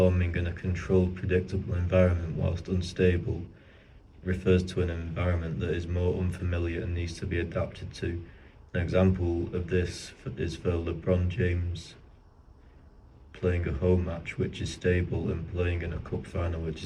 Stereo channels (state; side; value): identical; both; correlation 1.00